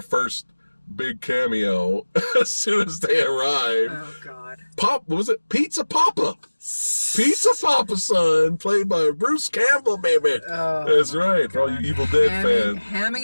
first big cameo as soon as they arrive. Oh, God. Was it Pizza Papa? Pizza Papa, son, played by Bruce Campbell, baby. Oh, that's right, for all you Evil Dead fans.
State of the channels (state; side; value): inverted; both; correlation -1.00